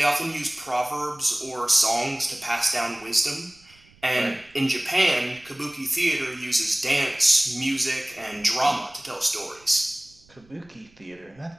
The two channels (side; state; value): right; noise; rumble, 29 dB below the sound